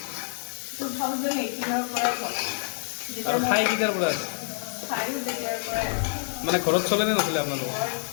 2018 পৰা আৰু খাই কেতিয়াৰ পৰা আছে? মানে ঘৰত চলে নে নচলে আপোনালোকৰ?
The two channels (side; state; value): right; silent; 60 dB below the other